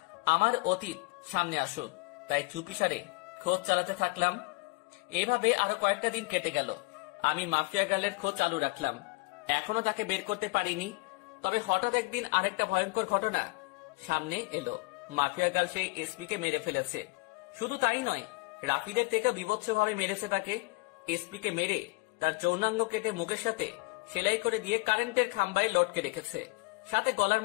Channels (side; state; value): right; quieter; 26.9 dB